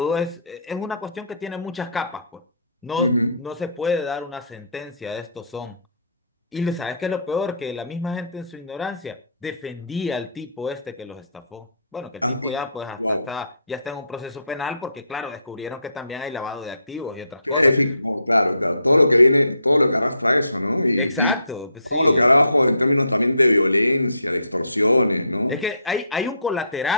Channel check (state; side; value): inverted; both; correlation -0.68